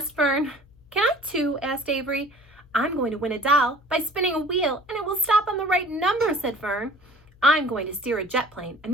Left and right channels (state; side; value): noise; left; hum, 28 dB below the sound